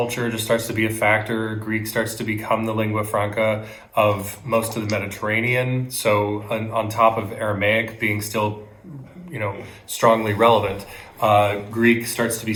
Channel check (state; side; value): identical; both; correlation 1.00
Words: just starts to be a factor. Greek starts to become the lingua franca of most of the Mediterranean. So on top of Aramaic being still, strongly relevant, Greek starts to be